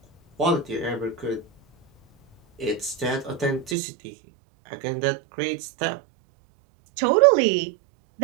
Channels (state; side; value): drops out; left; at 3.8 s